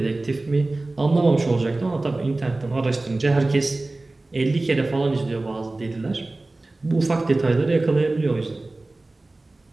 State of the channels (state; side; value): quieter; left; 3.0 dB